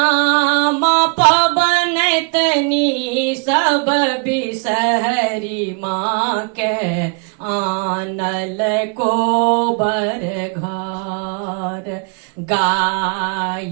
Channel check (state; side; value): quieter; left; 35.7 dB